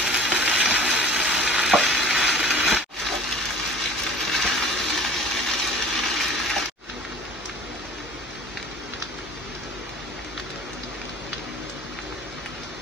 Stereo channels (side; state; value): both; normal; correlation 0.44